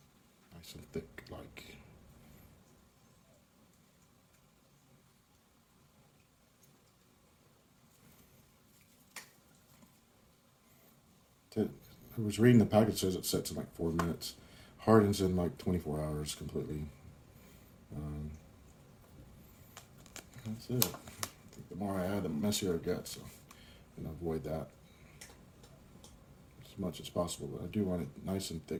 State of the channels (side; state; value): both; identical; correlation 1.00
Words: Nice and thick, like. I was reading the package, says it sets in like 4 minutes. Hardens in like 24 hours completely. That's it. I think the more I add, the messier it gets. So I'm going to avoid that as much as possible. But I do want it nice and